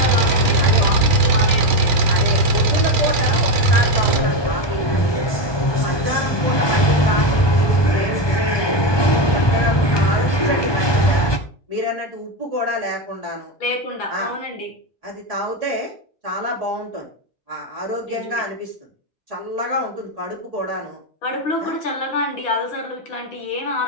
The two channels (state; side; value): late; right; 1.2 ms